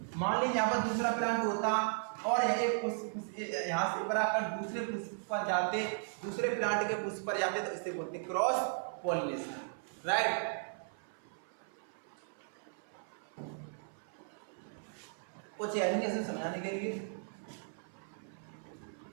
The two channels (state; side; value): silent; left; 53 dB below the other